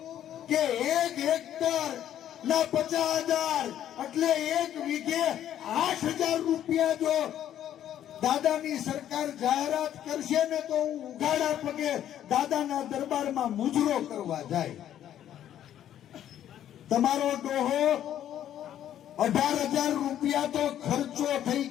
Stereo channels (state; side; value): quieter; right; 11.0 dB